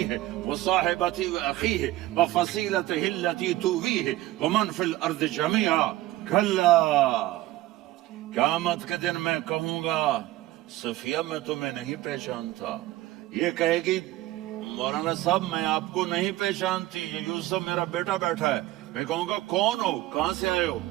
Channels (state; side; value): quieter; left; 16.4 dB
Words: وصاحبتہ واخیہ وفصیلتہ التي تؤویہ ومن فی الارض جميعا کلا، قیامت کے دن میں کہوں گا صفیہ میں تمہیں نہیں پہچانتا، یہ کہے گی مولانا صاحب میں آپ کو نہیں پہچانتی، یہ یوسف میرا بیٹا بیٹھا ہے، میں کہوں گا کون ہو، کہاں سے آئے ہو؟